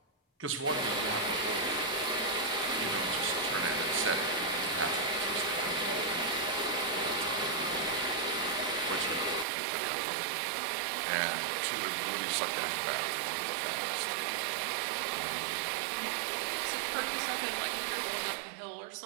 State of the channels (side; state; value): left; drops out; at 9.5 s